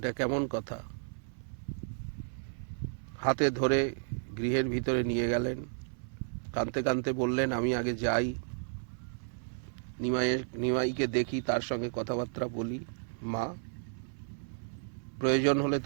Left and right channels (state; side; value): silent; left; 56 dB below the other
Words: কেমন কথা? হাতে ধরে গৃহের ভিতরে নিয়ে গেলেন। কাঁদতে কাঁদতে বললেন, আমি আগে যাই, নিমাইকে দেখি, তার সঙ্গে কথাবার্তা বলি। মা, প্রয়োজন হলে